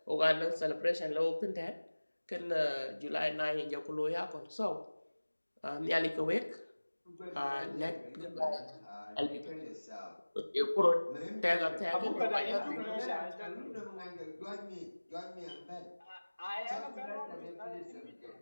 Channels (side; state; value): both; inverted; correlation -1.00